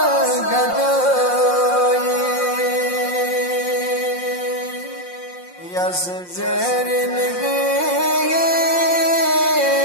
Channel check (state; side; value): late; right; 5.6 ms